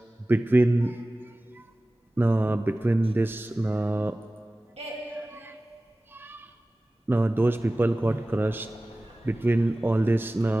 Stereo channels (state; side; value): normal; both; correlation 0.97